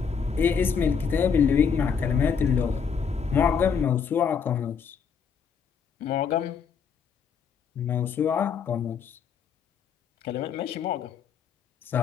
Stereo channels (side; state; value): right; quieter; 6.5 dB